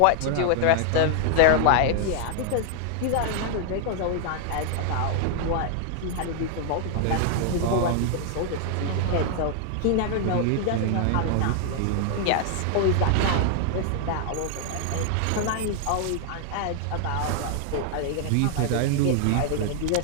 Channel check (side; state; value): both; different; correlation 0.00